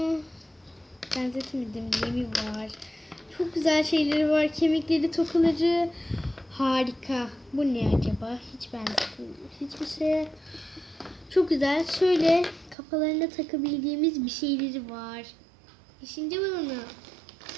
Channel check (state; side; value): drops out; left; at 12.8 s